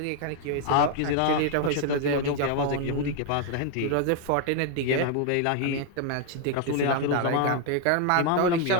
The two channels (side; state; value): both; different; correlation 0.00